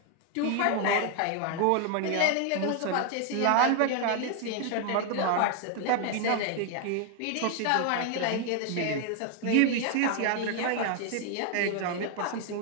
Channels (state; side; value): different; both; correlation 0.01